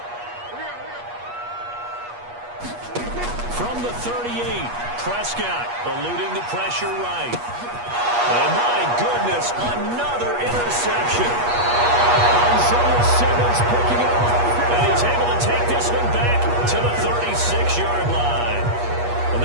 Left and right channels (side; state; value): left; late; 8.3 ms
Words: From the 38, Prescott eluding the pressure right. And my goodness, another interception. Isaiah Simmons picking it up. And he's able to take this one back to the 36-yard line. Well,